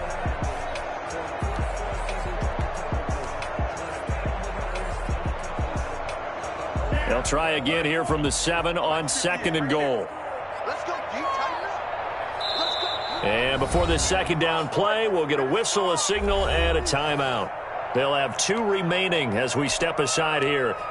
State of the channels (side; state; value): both; identical; correlation 1.00